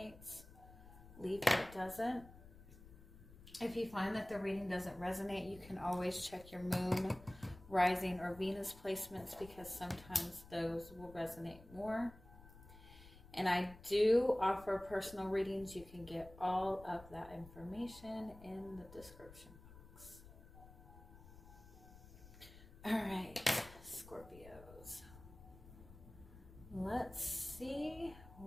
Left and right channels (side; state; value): left; noise; rumble, 19 dB below the sound